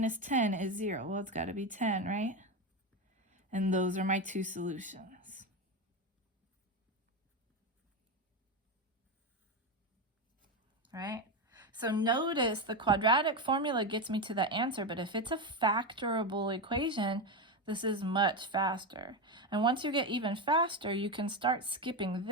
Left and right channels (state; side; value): normal; both; correlation 0.14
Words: 10 is 0? Well, it's got to be 10, right? And those are my two solutions. Right? So notice the quadratic formula gets me to the answer, but if it's a factorable equation, this is much faster. And once you get even faster, you can start skipping